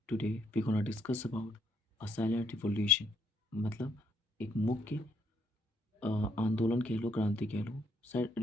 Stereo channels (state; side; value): normal; both; correlation 0.72